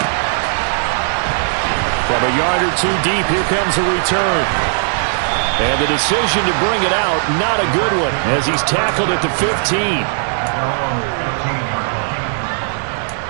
From a yard or 2 deep, here comes a return. And the decision to bring it out, not a good one, as he's tackled at the 15.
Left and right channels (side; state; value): left; silent; 68 dB below the other